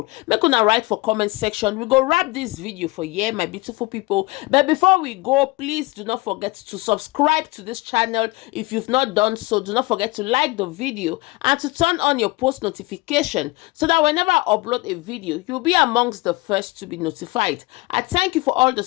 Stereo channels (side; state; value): right; quieter; 22.6 dB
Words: Make una write for comment section. We go wrap this video for here, my beautiful people. But before we go, please do not forget to subscribe to this channel if you've not done so. Do not forget to like the video and to turn on your post notification so that whenever I upload a video, you'll be amongst the first to be notified. I thank you for all the